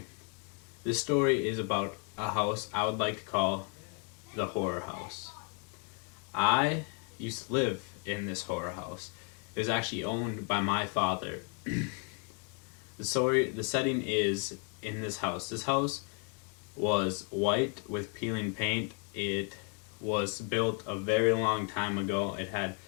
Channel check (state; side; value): quieter; right; 39.5 dB